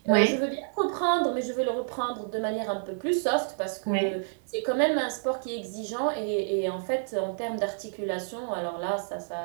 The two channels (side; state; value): left; silent; 59 dB below the other